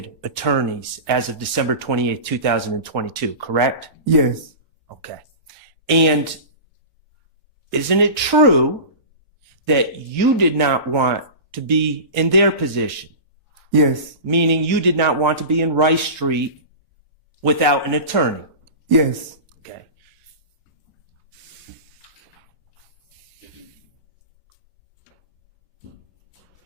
attorneys as of December 28, 2022, correct? Yes. Okay. And isn't it true that you did not want to be in their position? Yes. Meaning you did not want to be in Rice Street without an attorney? Yes. Okay.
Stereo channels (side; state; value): both; inverted; correlation -0.30